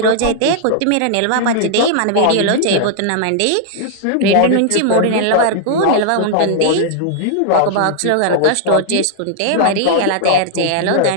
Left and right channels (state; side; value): different; both; correlation -0.01